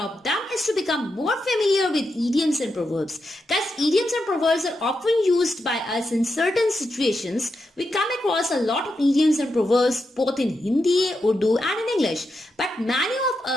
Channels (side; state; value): both; normal; correlation 0.86